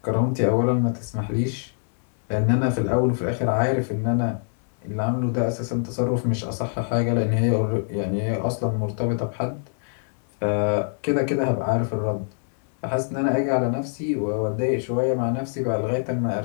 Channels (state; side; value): silent; right; 62 dB below the other